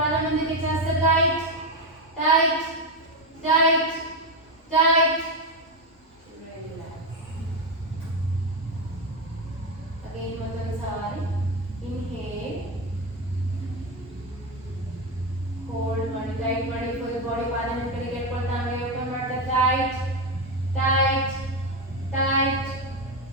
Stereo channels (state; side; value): normal; both; correlation 0.11